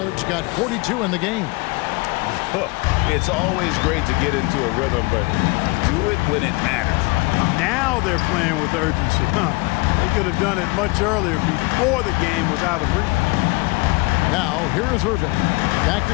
got 42 in the game. It's always great to get into a rhythm, but do it when it matters. Now they're playing with urgency. They could have done it much earlier before the game was out of reach. Now, here is Irving. Back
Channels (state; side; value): quieter; right; 25.5 dB